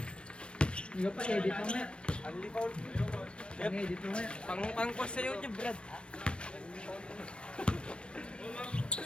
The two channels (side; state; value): right; late; 0.057 ms